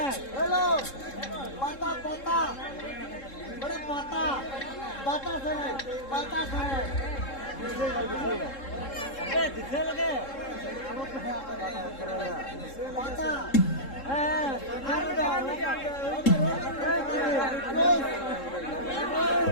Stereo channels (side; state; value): right; late; 3.7 ms